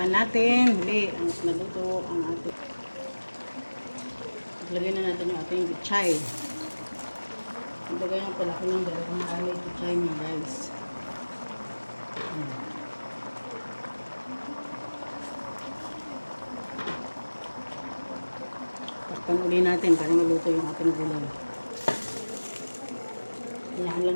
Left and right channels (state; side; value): inverted; both; correlation -1.00